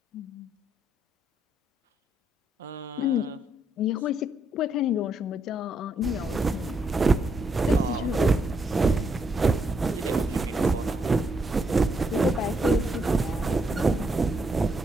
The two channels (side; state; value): both; normal; correlation 0.77